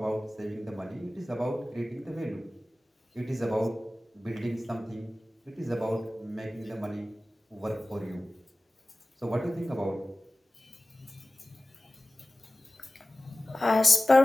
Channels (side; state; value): both; normal; correlation 0.97